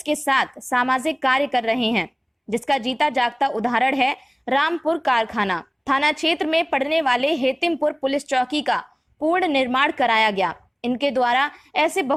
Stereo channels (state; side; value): identical; both; correlation 1.00